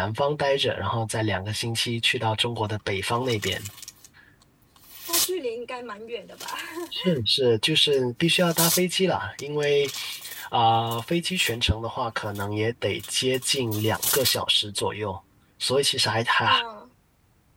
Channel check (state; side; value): identical; both; correlation 1.00